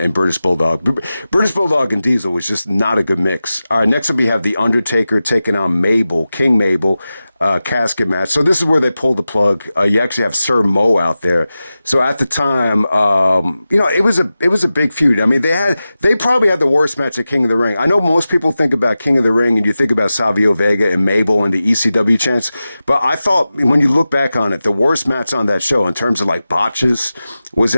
British Bulldog. British Bulldog and Diesel was just not a good mix. Next up we have the Undertaker taking on Mabel, King Mabel. Casket match. So this is where they pulled the plug. You actually have Sir Mo out there. So at the time, it was a big feud. I mean, they probably had the worst match at King of the Ring. I know most people think about King of the Ring and you think about Savio Vega and Mabel and the ECW chants, but I thought when you look back on it, the worst match on that show in terms of like botches was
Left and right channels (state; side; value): inverted; both; correlation -0.94